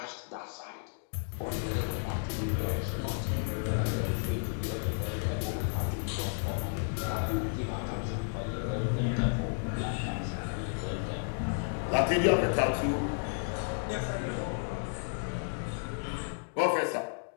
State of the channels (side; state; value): right; silent; digital silence